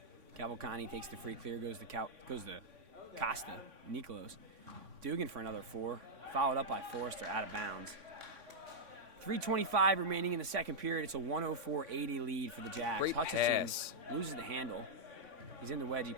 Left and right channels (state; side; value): late; left; 3.5 ms